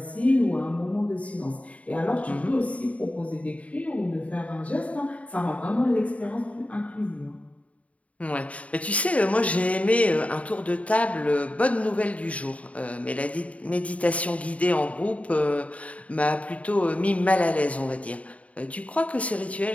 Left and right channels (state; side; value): late; right; 0.067 ms